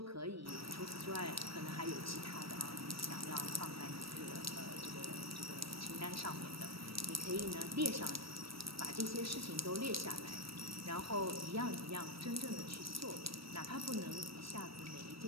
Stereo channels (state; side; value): late; left; 0.75 ms